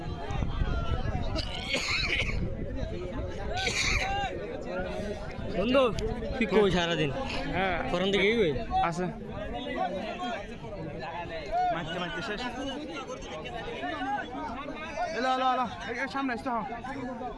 বন্ধু তুই কই সারাদিন? হ্যাঁ ফোরন দিকে কই আছে মারতে মারতে শেষ এলো এলো এলো সামনে আসতে হ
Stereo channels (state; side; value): identical; both; correlation 1.00